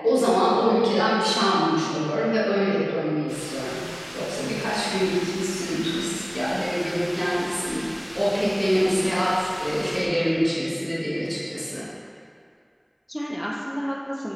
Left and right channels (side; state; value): both; identical; correlation 1.00